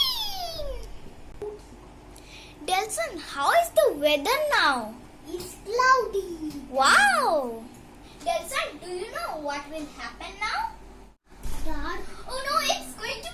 Delson, how is the weather now? It's cloudy. Wow! Delson, do you know what will happen now? Dark. Oh no, it's going to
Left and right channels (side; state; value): both; identical; correlation 1.00